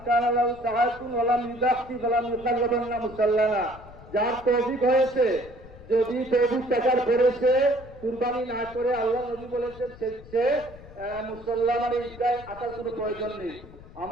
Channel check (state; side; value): noise; left; rumble, 19 dB below the sound